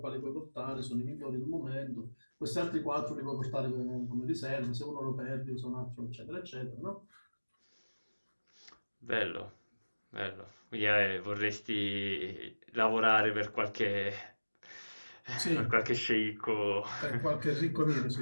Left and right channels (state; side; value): inverted; both; correlation -1.00